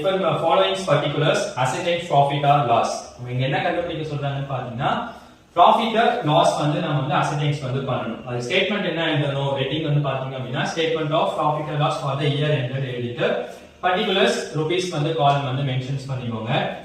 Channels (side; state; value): both; identical; correlation 1.00